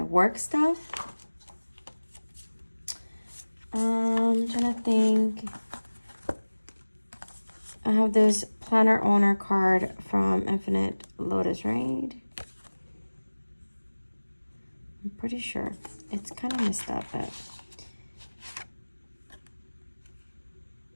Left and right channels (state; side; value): inverted; both; correlation -1.00